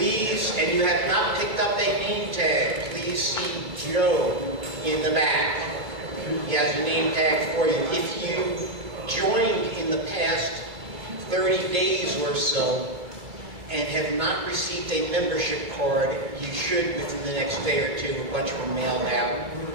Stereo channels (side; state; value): left; late; 2.3 ms